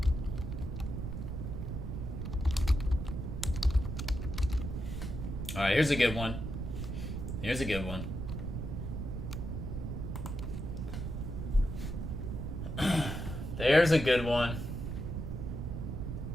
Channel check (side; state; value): right; noise; rumble, 4 dB below the sound